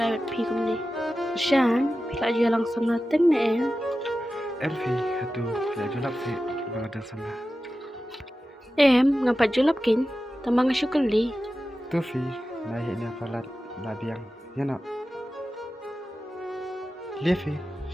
pikum ni. Kershan, pila aja langsung nateng na Elfi, hatu pila julap se bagada sama. Ngapa julap kin? Tambang syukur li. Tufi, naik ni apalat labiang, ya nak. Lefi,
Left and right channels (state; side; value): normal; both; correlation 0.93